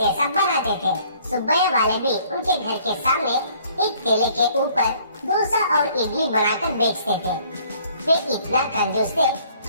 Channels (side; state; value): both; inverted; correlation -0.59